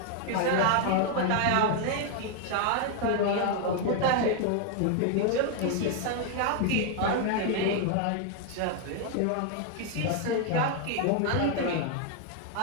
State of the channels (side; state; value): both; different; correlation 0.00